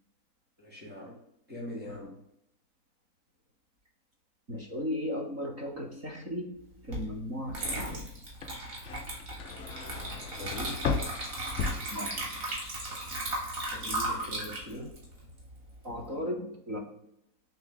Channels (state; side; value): late; left; 4.1 ms